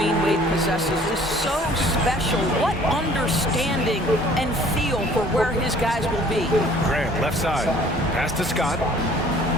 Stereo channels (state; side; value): normal; both; correlation 0.54